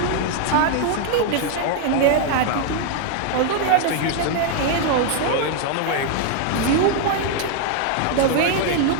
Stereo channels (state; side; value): different; both; correlation 0.00